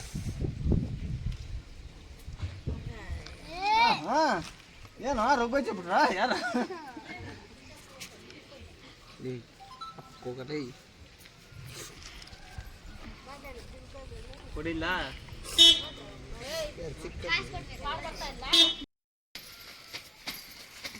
ಏನೋ ರೋಗ ಬಿಟ್ರ ಯಾರ ಕೊಡಿಲ್ಲ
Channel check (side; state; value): both; identical; correlation 1.00